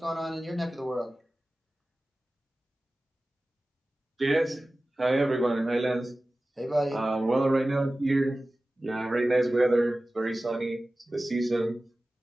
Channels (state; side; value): normal; both; correlation 0.96